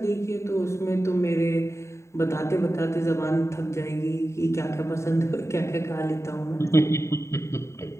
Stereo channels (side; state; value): right; late; 0.14 ms